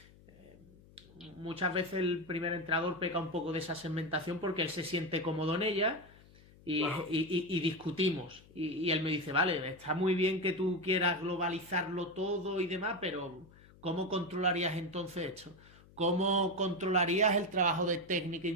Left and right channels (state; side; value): noise; left; hum, 24 dB below the sound